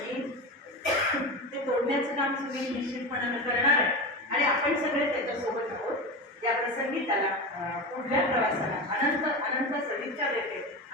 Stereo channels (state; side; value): normal; both; correlation 0.23